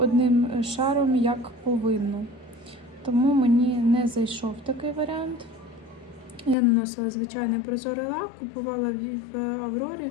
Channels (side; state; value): right; drops out; at 6.6 s